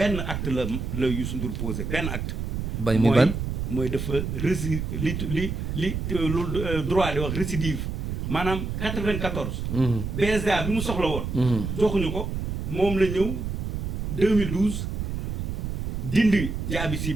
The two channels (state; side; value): noise; right; rumble, 3 dB below the sound